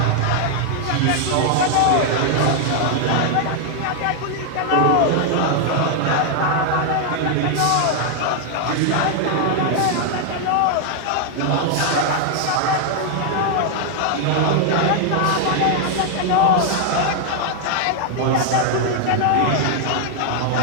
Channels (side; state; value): both; different; correlation 0.00